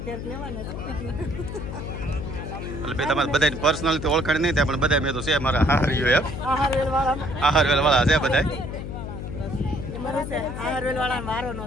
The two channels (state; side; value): noise; left; hum, 7 dB below the sound